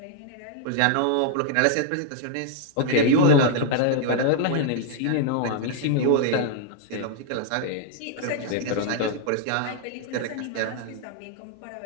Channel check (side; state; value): both; different; correlation 0.00